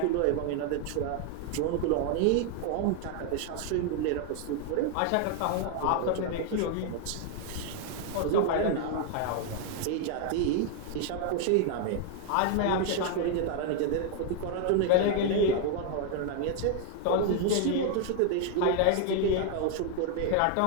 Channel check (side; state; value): both; different; correlation 0.00